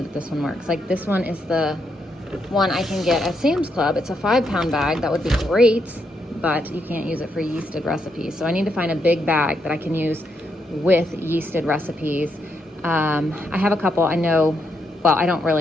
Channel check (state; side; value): normal; both; correlation 0.79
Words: that this one works. Like this one is the one I can get at Sam's Club. It's a 5-pound bag. That would be great, but you can't use it for yeasted recipes. So I need to find a big bag that I can use with yeasted recipes. I have a couple I know, well, I don't